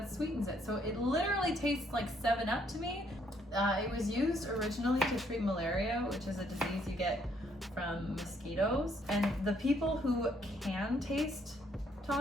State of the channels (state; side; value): normal; both; correlation 0.69